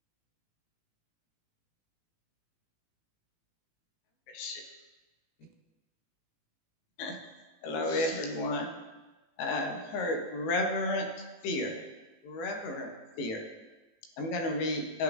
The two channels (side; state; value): right; late; 18 ms